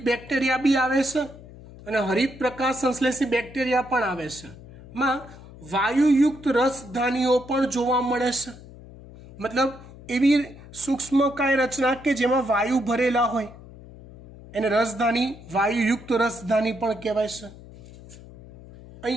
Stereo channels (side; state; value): left; noise; hum, 18 dB below the sound